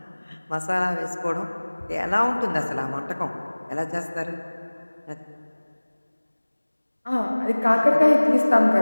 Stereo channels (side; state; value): both; inverted; correlation -1.00